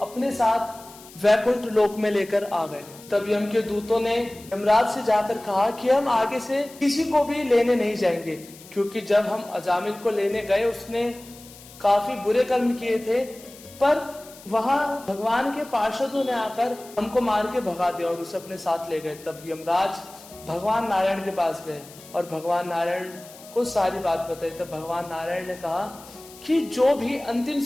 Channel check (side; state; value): left; noise; hiss, 20 dB below the sound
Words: अपने साथ वैकुंठ लोक में लेकर आ गए। तब यम के दूतों ने यमराज से जाकर कहा कि हम आगे से किसी को भी लेने नहीं जाएंगे, क्योंकि जब हम अजामिल को लेने गए उसने काफी बुरे कर्म किए थे, पर वहां भगवान के पार्षदों ने आकर हमको मार के भगा दिया और उसे अपने साथ ले गए। तब यमराज भगवान नारायण के पास गए और भगवान नारायण को सारी बात बताई। तब भगवान नारायण ने कहा कि जो भी अंतिम